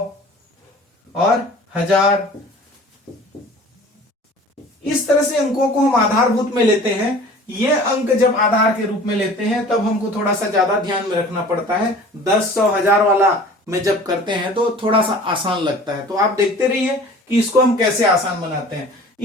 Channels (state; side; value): normal; both; correlation 0.45